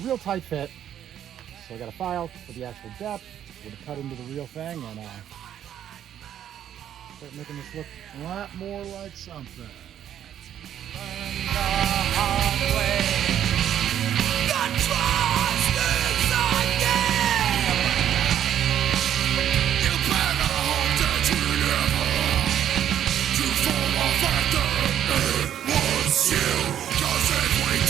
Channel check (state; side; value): quieter; left; 10.3 dB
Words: a real tight fit. So I got a file for the actual depth. We're gonna cut into the real thing and start making this look a lot more like something.